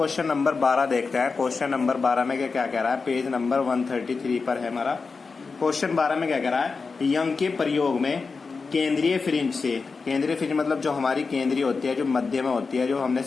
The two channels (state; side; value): quieter; right; 4.6 dB